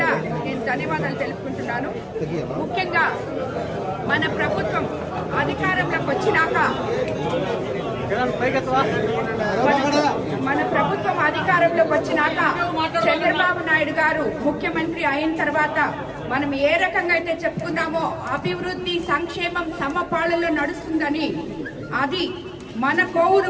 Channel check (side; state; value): both; identical; correlation 1.00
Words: నేను ధన్యవాదాలు తెలుపుకుంటున్నాను. ముఖ్యంగా మన ప్రభుత్వం అధికారంలోకి వచ్చినాక చంద్రబాబు నాయుడు గారు ముఖ్యమంత్రి అయిన తర్వాత మనం ఏ రకంగా అయితే చెప్పుకున్నామో అభివృద్ధి సంక్షేమం సమపాళలో నడుస్తుందని అది మన కోవూరు